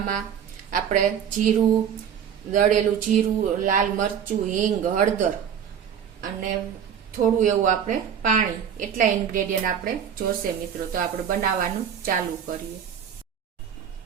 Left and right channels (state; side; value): quieter; left; 8.3 dB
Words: આપણે જીરું, દળેલું જીરું, લાલ મરચું, હિંગ, હળદર અને થોડું એવું આપણે પાણી, એટલા ઇન્ગ્રેડિયન્ટ આપણે જોશે મિત્રો। તો આપણે બનાવવાનું ચાલુ કરીએ।